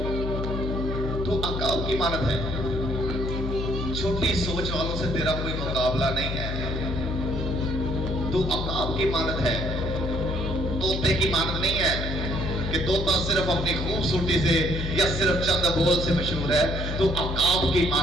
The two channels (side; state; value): left; noise; hum, 3 dB below the sound